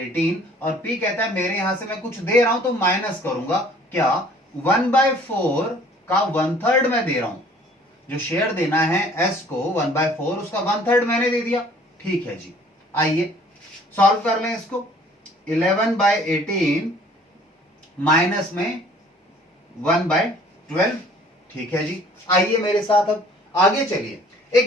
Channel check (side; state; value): both; normal; correlation 0.54